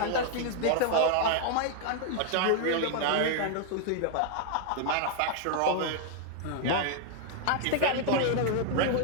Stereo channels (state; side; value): different; both; correlation 0.00